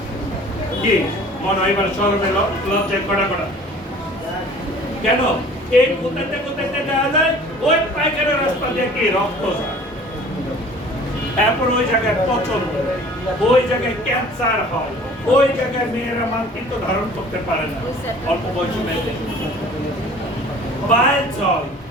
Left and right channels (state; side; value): normal; both; correlation 0.48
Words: কি মনে হয় এবার শরমে লজ্জায় কড়া কড়া কেন এই কোথাতে যাওয়া যায় ওই পায়খানা রাস্তা দিয়ে কি রক্ত যায় এরপর ওই জায়গায় পচন ওই জায়গায় ক্যান্সার হয় ওই জায়গায় মেয়েরা মাতৃত্ব ধারণ করতে পারে না অল্প বয়সী মেয়েদের বাইল হয়